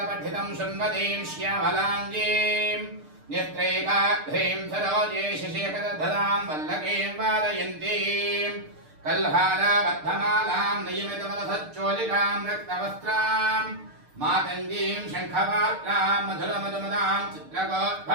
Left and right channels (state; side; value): late; left; 6.7 ms